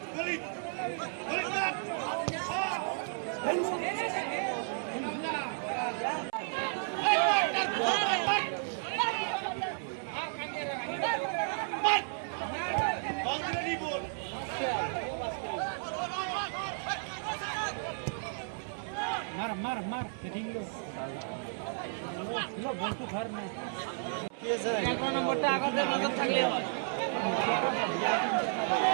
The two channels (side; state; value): left; silent; 56 dB below the other